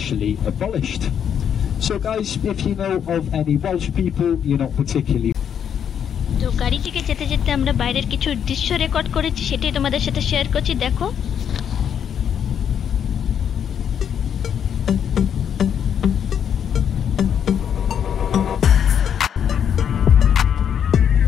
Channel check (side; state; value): right; quieter; 8.4 dB